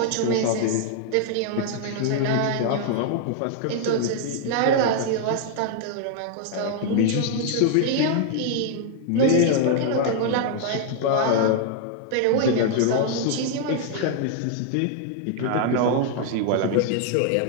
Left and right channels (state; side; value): different; both; correlation 0.00